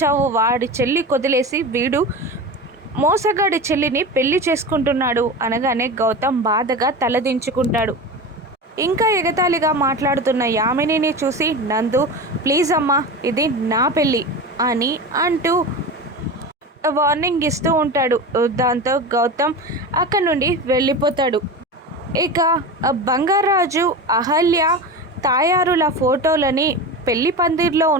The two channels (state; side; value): normal; both; correlation 0.27